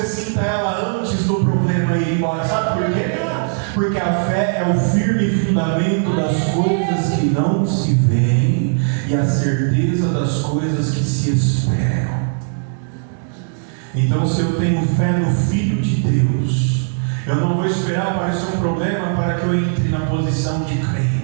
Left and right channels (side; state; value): left; silent; digital silence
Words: sinta ela antes do problema ir embora. Sabe por quê? Porque a fé é o firme fundamento das coisas que não se veem e a certeza das coisas que se esperam. Então, se eu tenho fé no Filho de Deus, eu não vou esperar aparecer um problema para que eu entre na posição de